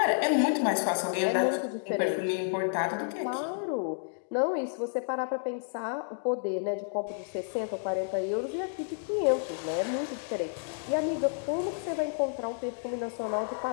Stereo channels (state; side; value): silent; right; digital silence